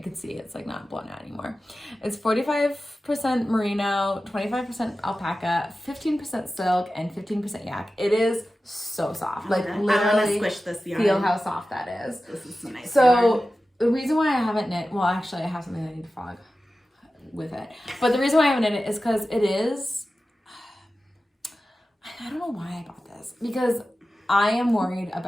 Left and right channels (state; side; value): normal; both; correlation 0.94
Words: can see it's like not blown out anymore. It's 45% merino, 25% alpaca, 15% silk, and 15% yak. It is so soft. Like literally, I'm gonna squish this yarn. Feel how soft that is. This is so nice. So yarn. the reason why I haven't knit, well, actually, I have something I need to frog with it. But the reason why I haven't knit it is because it is. I don't know why I bought this, because I am worried